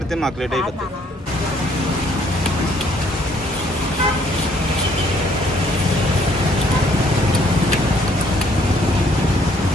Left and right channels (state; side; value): normal; both; correlation 0.64